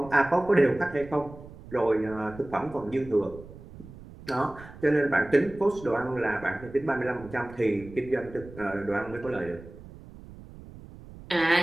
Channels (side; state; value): right; noise; rumble, 17 dB below the sound